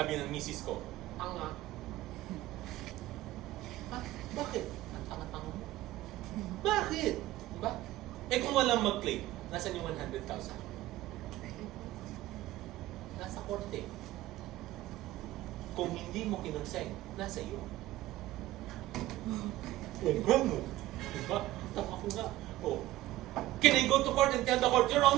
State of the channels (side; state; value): left; quieter; 16.0 dB